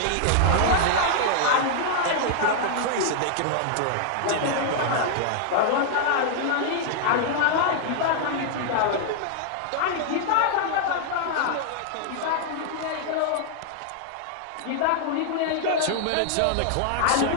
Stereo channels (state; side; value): different; both; correlation -0.01